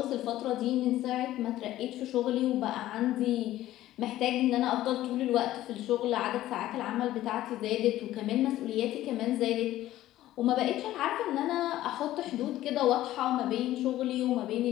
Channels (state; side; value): quieter; right; 14.5 dB